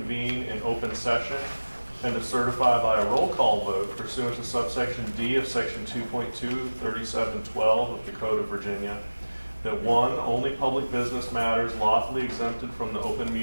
in open session and to certify by a roll call vote pursuant to subsection D of section 2.23712 of the Code of Virginia that one, only public business matters lawfully exempted from the open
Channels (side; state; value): both; inverted; correlation -1.00